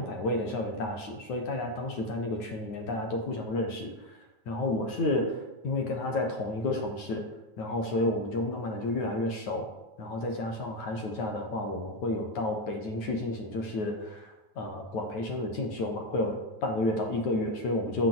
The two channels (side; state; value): right; late; 9.3 ms